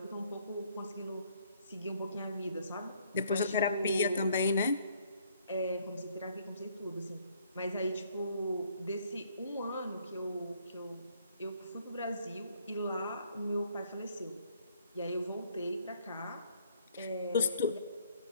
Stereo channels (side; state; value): both; inverted; correlation -0.64